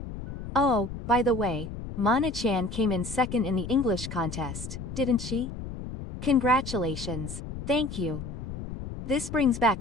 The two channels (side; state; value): left; noise; rumble, 9 dB below the sound